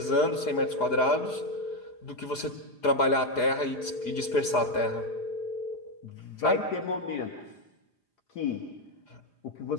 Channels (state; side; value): late; right; 4.9 ms